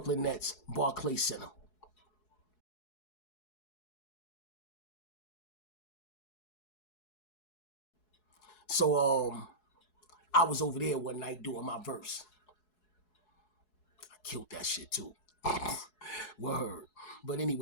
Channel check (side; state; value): right; late; 4.7 ms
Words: Nets Barclay Center. So I was over there one night doing my verse. I killed that shit too. Word. But